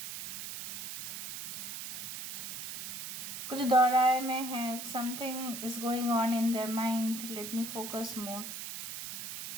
कुछ दोहराए में है, something is going on in their mind, let me focus more.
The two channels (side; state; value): right; noise; hiss, 7 dB below the sound